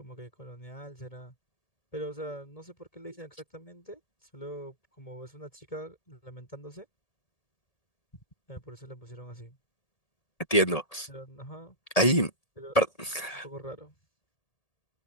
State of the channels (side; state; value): right; late; 1.8 ms